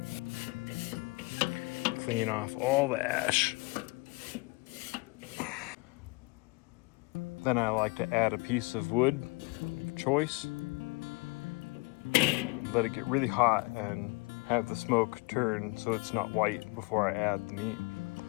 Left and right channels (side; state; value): right; quieter; 27.2 dB